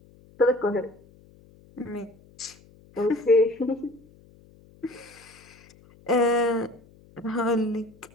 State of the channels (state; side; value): noise; left; hum, 26 dB below the sound